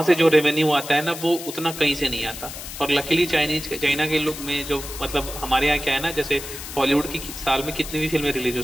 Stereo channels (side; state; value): left; noise; hiss, 10 dB below the sound